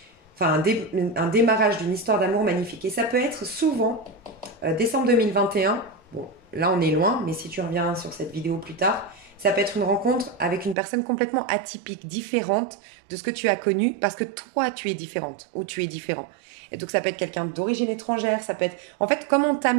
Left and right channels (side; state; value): left; drops out; at 10.8 s